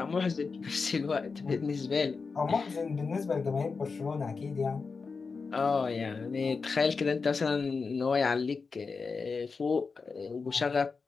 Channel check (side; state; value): right; quieter; 4.7 dB